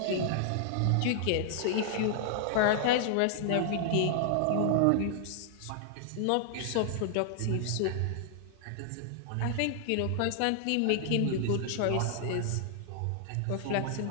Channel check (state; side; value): different; both; correlation 0.00